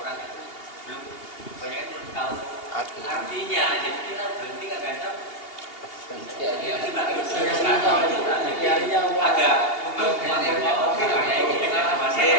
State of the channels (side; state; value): right; late; 2.8 ms